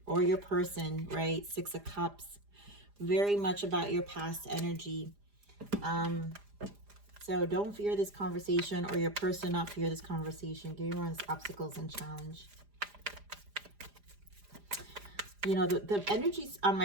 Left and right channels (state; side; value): late; left; 4.9 ms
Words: or your person, right? 6 of Cups, very much about your past energy. So don't fear this conversation, or your person not fear this conversation. Give me obstacles and challenge. You know, the energies on my